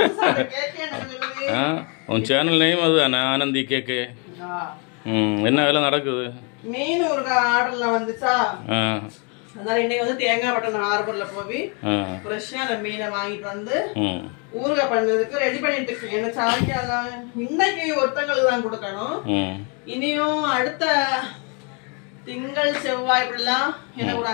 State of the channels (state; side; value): quieter; right; 34.9 dB